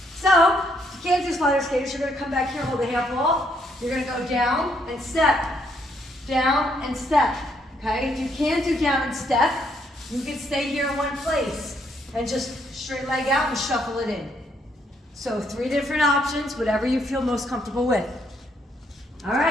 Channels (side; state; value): both; normal; correlation 0.72